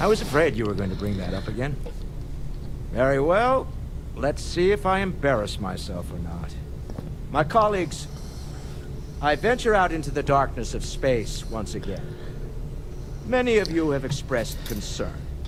I was afraid you were going to bring that up again. Very well. Let's see if I embarrass myself or not. My colleagues, I venture out into the darkness of space once again. Many of you have expressed concern.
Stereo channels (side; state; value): both; identical; correlation 1.00